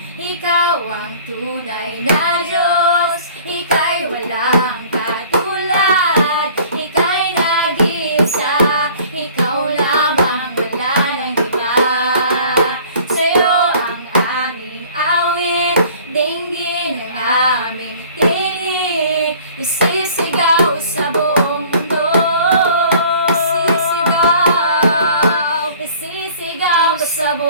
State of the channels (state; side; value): inverted; both; correlation -0.50